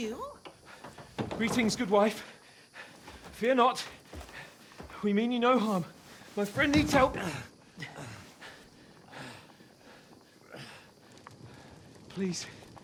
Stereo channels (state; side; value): identical; both; correlation 1.00